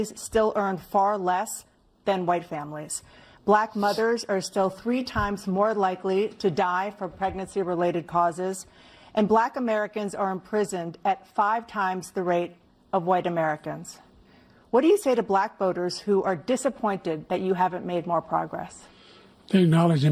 still earn far less than white families. Black mothers are still 3 times more likely to die from pregnancy-related causes, and black Americans are imprisoned at 5 times the rate of white Americans. What do you say to black voters who are disappointed that you haven't made more progress? They acknowledge they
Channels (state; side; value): identical; both; correlation 1.00